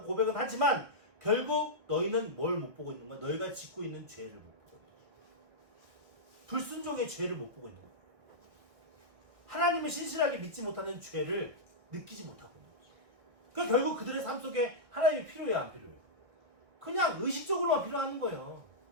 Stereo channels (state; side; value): late; left; 1.8 ms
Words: 고백은 하지만 결국 너희는 뭘 못 보고 있는 거야? 너희가 짓고 있는 죄를 못 보고 있는 거야. 불순종의 죄를 못 보고 있는 거야. 하나님을 신실하게 믿지 못하는 죄를 느끼지 못하고 있는 거죠. 그러니까 결국 그들의 삶 속에 하나님이 필요해요, 안 필요해요? 그냥 의식적으로만 필요한 거예요.